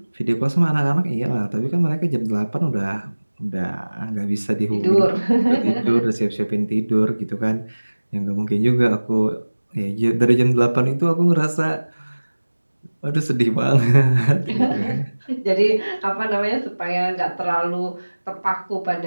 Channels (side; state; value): both; inverted; correlation -1.00